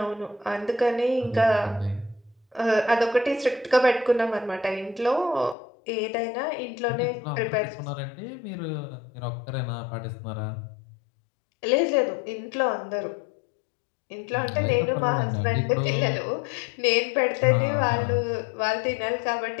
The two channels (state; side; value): drops out; right; at 5.6 s